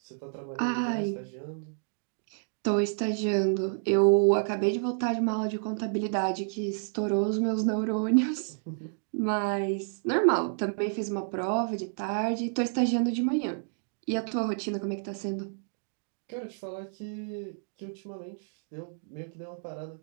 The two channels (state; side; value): silent; left; digital silence